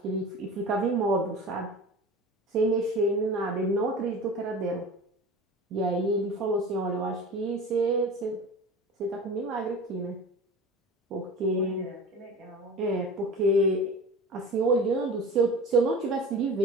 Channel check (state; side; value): normal; both; correlation 0.36